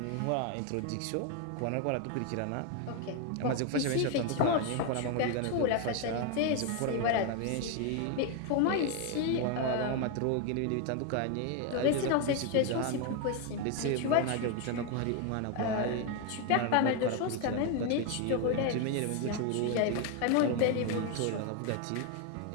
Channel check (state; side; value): different; both; correlation 0.01